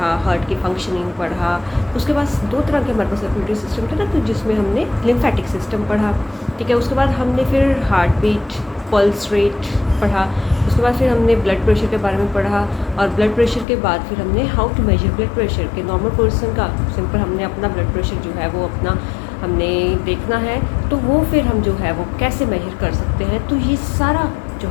heart की functioning पढ़ा। उसके बाद दो तरह के हमारे पास सर्कुलेटरी सिस्टम थे ना, तो जिसमें हमने लिम्फेटिक सिस्टम पढ़ा, ठीक है। उसके बाद हमने फिर हार्ट बीट, पल्स रेट पढ़ा। उसके बाद फिर हमने ब्लड प्रेशर के बारे में पढ़ा, और ब्लड प्रेशर के बाद फिर हमने how to measure blood pressure के नॉर्मल पर्सन का सिंपल हमने अपना ब्लड प्रेशर जो है वो अपना हमने देखना है, तो वो फिर हम जो है वो कैसे मेजर कर सकते हैं। तो ये सारा जो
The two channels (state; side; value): drops out; right; at 13.7 s